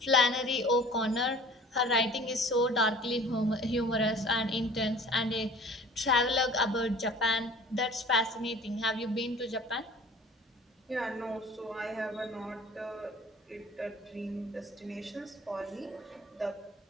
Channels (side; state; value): both; normal; correlation 0.46